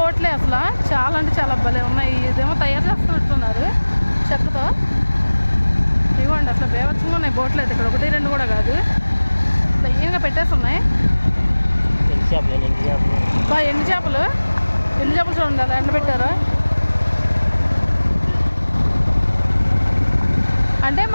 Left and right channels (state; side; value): inverted; both; correlation -1.00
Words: అసలు చాలా అంటే చాలా భలే ఉన్నాయి. ఇదేమో తయారు చేస్తున్నట్టున్నారు చెక్కతో. ఇవ్వండి, అసలు బేవచ్చంగా ఉన్నాయి బోట్లు అయితే. ఇక్కడ 1, 2 కూడా కాదు, లైన్గా పెట్టేసి ఉన్నాయి. ఎండు చేపలు చూడండి, అలా ఎండబెట్టారు. అంటే